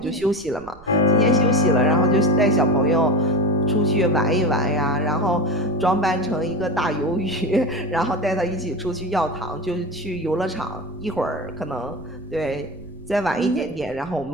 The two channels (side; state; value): right; noise; rumble, 21 dB below the sound